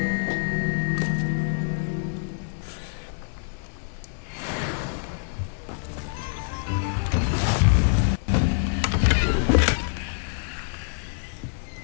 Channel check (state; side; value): silent; right; digital silence